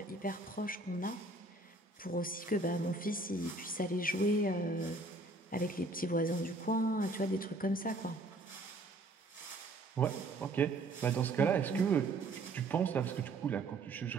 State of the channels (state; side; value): quieter; left; 3.0 dB